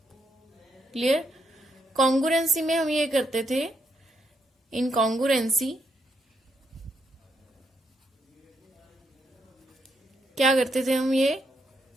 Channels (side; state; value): both; normal; correlation 0.78